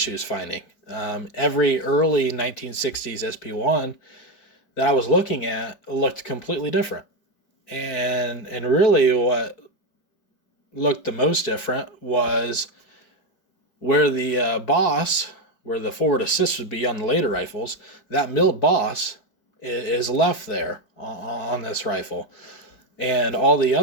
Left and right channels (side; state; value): right; late; 4.6 ms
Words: finding. Every early 1960s SP1 that I was looking at looked completely different. And really what looked the most different was where the boss, where the forward assist would be on the later rifles, that milled boss is left there on this rifle. And all the